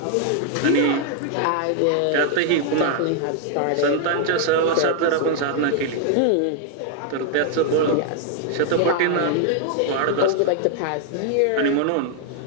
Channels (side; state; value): both; different; correlation 0.00